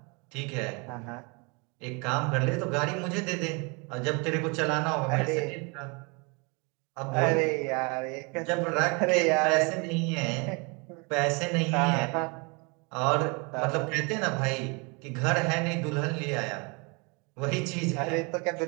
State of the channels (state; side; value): quieter; left; 30.6 dB